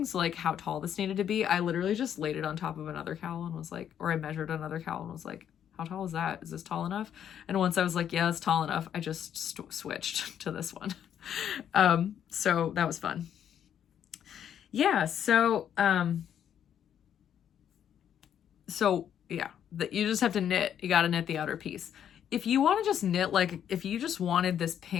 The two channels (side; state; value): right; quieter; 9.4 dB